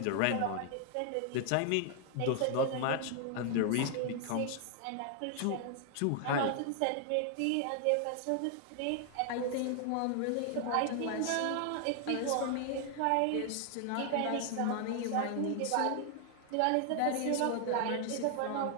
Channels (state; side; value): different; both; correlation 0.00